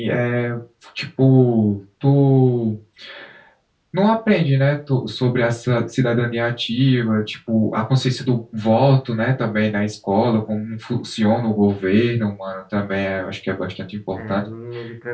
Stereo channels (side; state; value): both; identical; correlation 1.00